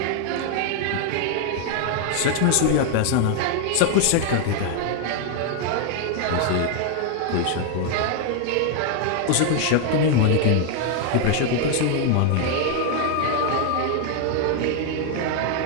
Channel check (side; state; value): both; different; correlation 0.00